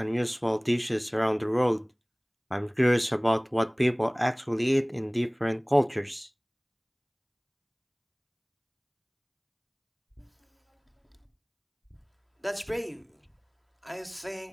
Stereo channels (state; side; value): identical; both; correlation 1.00